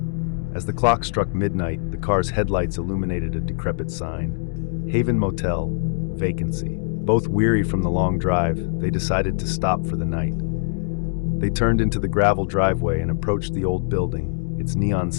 As the clock struck midnight, the car's headlights illuminated a decrepit sign: Haven Motel, vacancy. Both weary from the long drive, they decided to stop for the night. They turned into the gravel driveway and approached the old building, its neon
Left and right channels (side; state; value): right; silent; digital silence